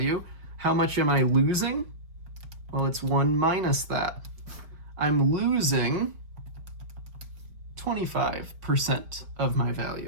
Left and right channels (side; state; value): left; late; 5.1 ms